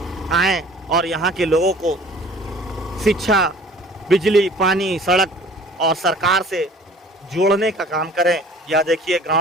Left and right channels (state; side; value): normal; both; correlation 0.48